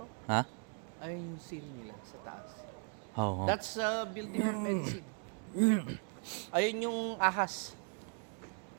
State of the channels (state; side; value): quieter; left; 39.5 dB